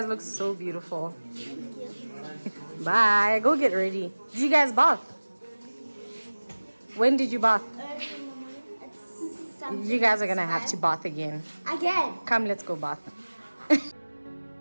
look so beautiful. Bye. Go get ready. Did you guys bath? When did you bath? You guys are gonna have to bath again. Again. Come, let's go bath.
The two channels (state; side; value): inverted; both; correlation -1.00